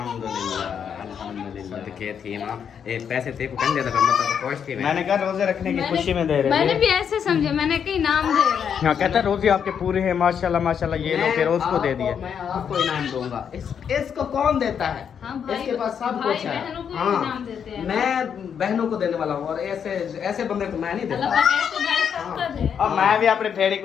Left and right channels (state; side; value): quieter; right; 7.7 dB